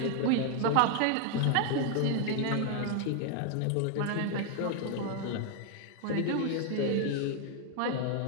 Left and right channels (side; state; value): both; different; correlation 0.00